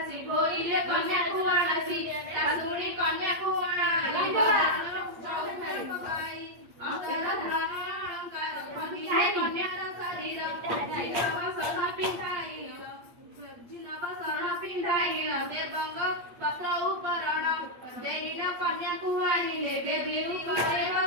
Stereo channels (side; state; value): left; late; 8.7 ms